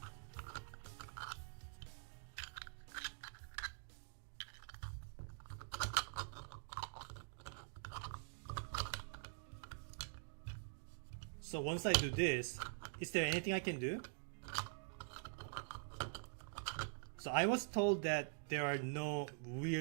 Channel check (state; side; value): silent; left; digital silence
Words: So once I do this, is there anything I can do? So I was told that there are no